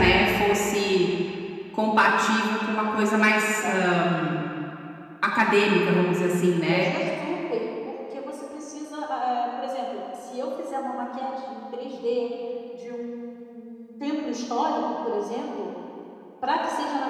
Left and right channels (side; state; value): both; identical; correlation 1.00